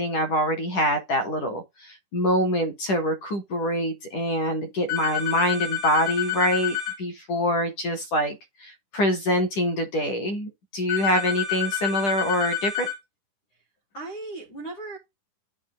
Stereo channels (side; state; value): right; late; 10 ms